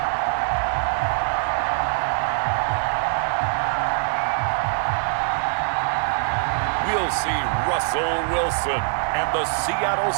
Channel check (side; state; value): left; silent; digital silence